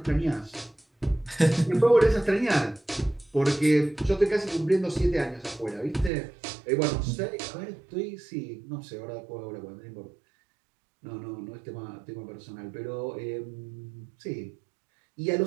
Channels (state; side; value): drops out; left; at 6.1 s